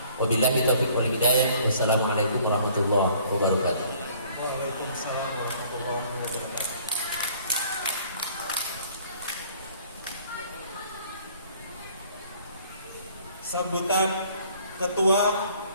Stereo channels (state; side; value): inverted; both; correlation -0.56